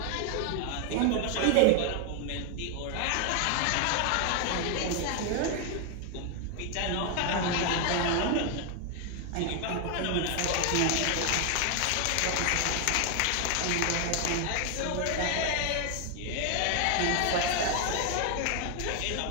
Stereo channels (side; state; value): both; different; correlation 0.00